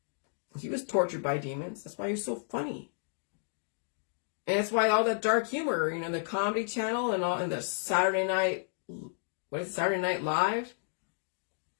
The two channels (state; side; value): silent; right; digital silence